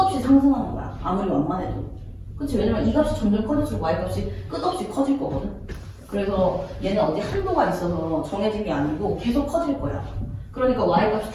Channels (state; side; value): identical; both; correlation 1.00